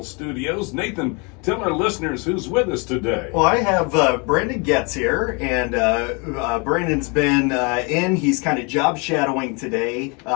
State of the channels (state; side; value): quieter; right; 31.4 dB